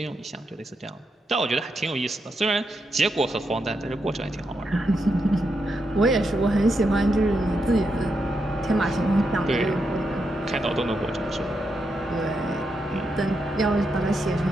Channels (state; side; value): normal; both; correlation 0.83